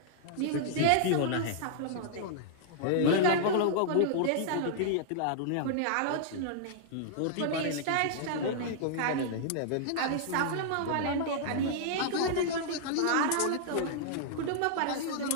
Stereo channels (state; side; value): different; both; correlation -0.01